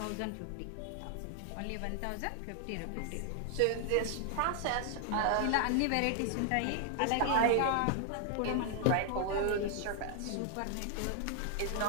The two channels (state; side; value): different; both; correlation 0.00